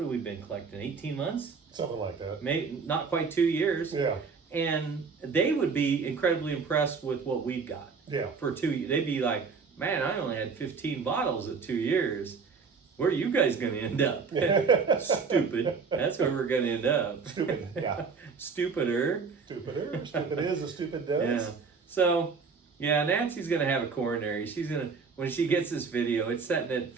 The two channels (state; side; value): quieter; left; 5.2 dB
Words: we been collecting? 18 months? Something like that. Maybe not quite 2 years. Yeah. And they would be incredibly impressed with what we've got. Yeah. For 2 years, they'd be like, "Man, I only had 15 bottles at 2 years. Where are you guys going to end up?" Stupid. That's where we're going to end up. Stupid. Yeah. Stupider. Stupider. Stupid is as stupid does. Yeah. So, yeah, Nancy's going to have a coronary. She's going to, when she gets this video, it's setting at